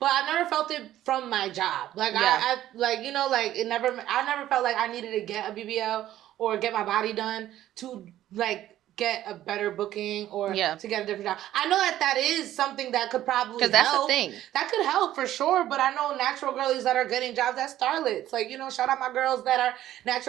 I've never felt it from my job. Like I like, you know, like I never felt like I needed to get a BBL or get my body done to like get a better booking or to get a different job. I know that is something that could probably help. That's the thing. That could help for sure, but I know natural girlies that are getting jobs as starlets. Like, you know, shout out my girls that are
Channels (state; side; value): quieter; left; 13.1 dB